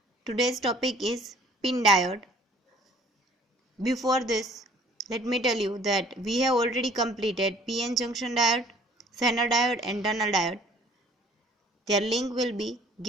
Today's topic is pin diode. Before this, let me tell you that we have already completed PN junction diode, Zener diode and tunnel diode. Their link will be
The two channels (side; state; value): both; normal; correlation 0.56